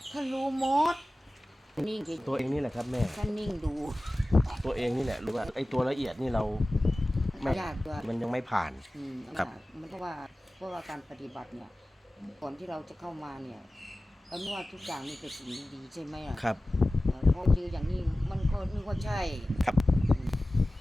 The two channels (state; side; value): normal; both; correlation 0.96